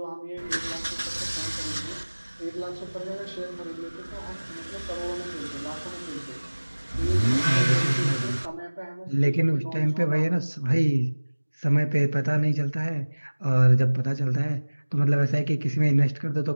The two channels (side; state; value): both; inverted; correlation -1.00